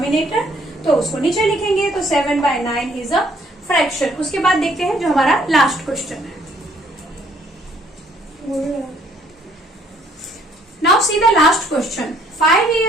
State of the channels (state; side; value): normal; both; correlation 0.64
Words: तो उसको नीचे लिखेंगे, तो 7 बाय 9 इज अ फ्रैक्शन। उसके बाद देखते हैं जो हमारा लास्ट क्वेश्चन है। Now see the last question. 5